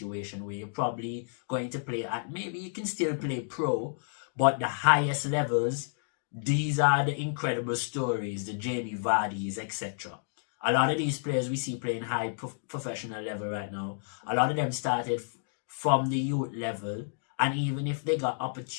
where you're probably going to play at, maybe you can still play pro, but the highest levels, these are the incredible stories, the Jamie Vardy's, etc. A lot of these players we see playing high professional level right now, a lot of them started from the youth level, and even if they got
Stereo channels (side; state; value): right; silent; digital silence